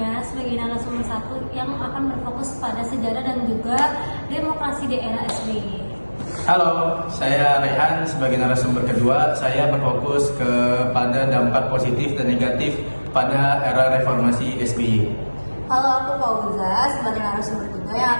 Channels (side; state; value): both; inverted; correlation -1.00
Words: sebagai narasumber 1 yang akan berfokus pada sejarah dan juga demokrasi di era SBY. Halo, saya Rehan sebagai narasumber kedua. Saya berfokus kepada dampak positif dan negatif pada era reformasi SBY. Halo, aku Fauza sebagai narasumber kedua yang